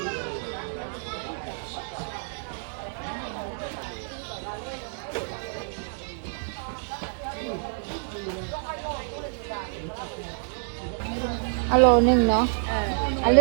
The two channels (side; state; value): left; silent; 60 dB below the other